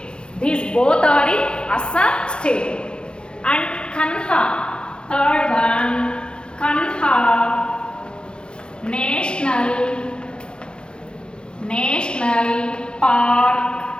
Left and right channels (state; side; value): late; right; 0.052 ms